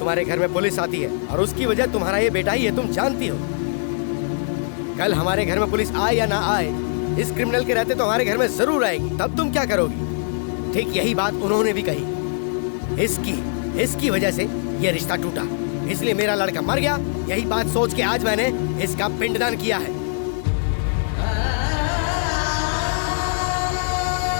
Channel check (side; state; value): right; silent; digital silence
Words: घर में पुलिस आती है और उसकी वजह तुम्हारा ये बेटा ही है, तुम जानती हो। कल हमारे घर में पुलिस आए या ना आए, इस क्रिमिनल के रहते तो हमारे घर में जरूर आएगी। तब तुम क्या करोगी? ठीक यही बात उन्होंने भी कही। इसकी वजह से ये रिश्ता टूटा, इसलिए मेरा लड़का मर गया। यही बात सोच के आज मैंने इसका पिंडदान किया है।